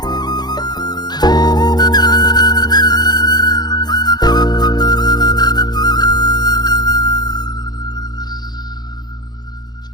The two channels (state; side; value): late; right; 0.20 ms